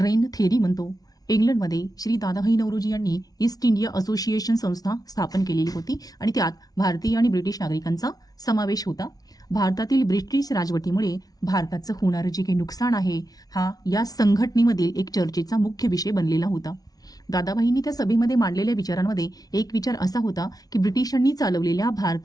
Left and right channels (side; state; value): right; late; 0.18 ms